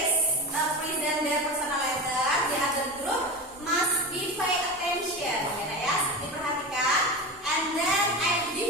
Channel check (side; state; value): both; normal; correlation 0.26